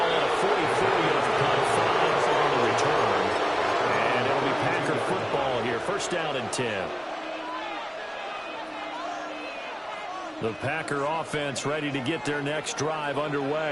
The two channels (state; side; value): identical; both; correlation 1.00